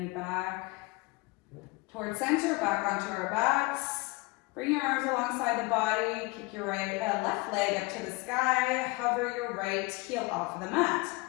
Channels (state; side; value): quieter; right; 25.1 dB